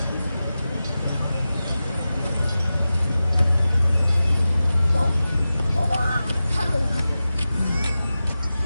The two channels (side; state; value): both; inverted; correlation -0.94